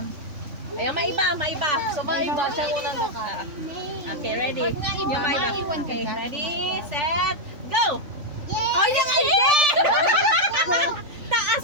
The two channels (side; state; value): left; late; 3.5 ms